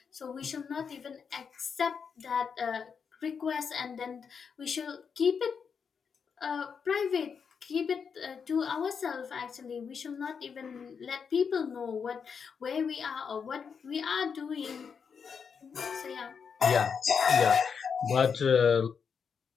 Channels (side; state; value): right; quieter; 6.3 dB